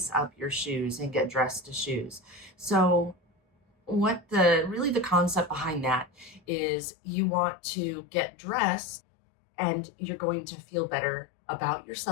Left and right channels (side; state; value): right; drops out; at 6.4 s